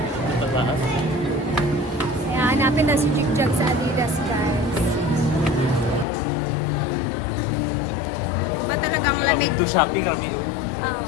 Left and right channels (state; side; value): drops out; right; at 6.1 s